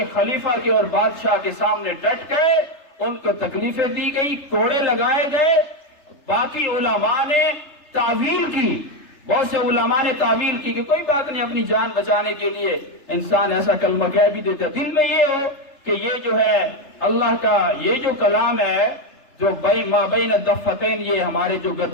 خلیفہ کے اور بادشاہ کے سامنے ڈٹ گئے، ان کو تکلیفیں دی گئی، کوڑے لگائے گئے۔ باقی علماء نے تعویل کی، بہت سے علماء نے تعویل کی کہ کوئی بات نہیں، اپنی جان بچانے کے لیے انسان ایسا کلمہ کہہ بھی دیتا، دل میں یہ ہو کہ یہ جو ہے اللہ کا یہ جو کلام ہے جو ما بین الدفتین، یہ ہمارے جو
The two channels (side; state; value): right; late; 3.3 ms